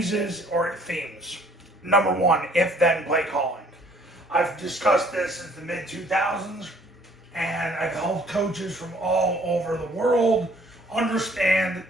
or themes. Number 1, if-then play calling. I've discussed this since the mid-2000s, and I've helped coaches from all over the world understand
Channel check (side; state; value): both; normal; correlation 0.59